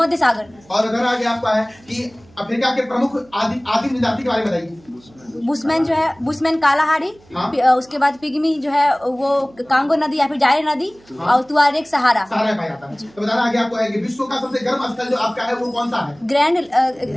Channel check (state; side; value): noise; right; hum, 28 dB below the sound